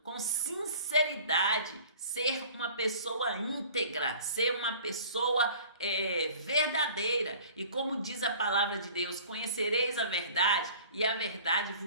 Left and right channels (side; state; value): both; inverted; correlation -0.46